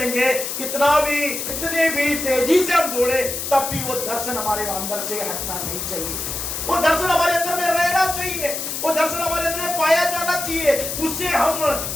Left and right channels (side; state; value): left; noise; hiss, 4 dB below the sound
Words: कितने भी तेजी से हम दौड़े, तब भी वो दर्शन हमारे अंदर से हटना नहीं चाहिए। वो दर्शन हमारे अंदर में रहना चाहिए, वो दर्शन हमारे अंदर में पाया जाना चाहिए, उससे हम